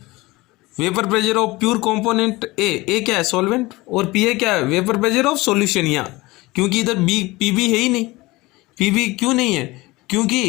vapour pressure of pure component ए क्या है सॉल्वेंट, और पी ए क्या है, वेपर प्रेशर ऑफ सॉल्यूशन। यहाँ क्योंकि इधर बी पी बी है ही नहीं, पी बी क्यों नहीं है,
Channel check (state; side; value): quieter; right; 21.2 dB